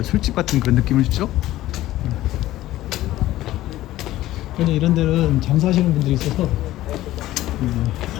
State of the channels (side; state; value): right; quieter; 15.3 dB